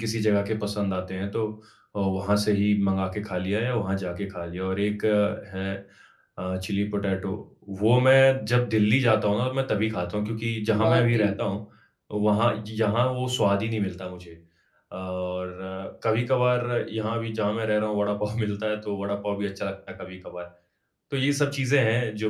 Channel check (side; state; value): both; identical; correlation 1.00